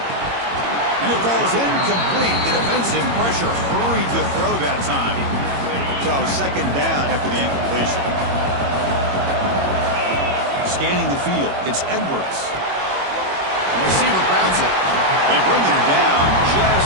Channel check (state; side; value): late; left; 21 ms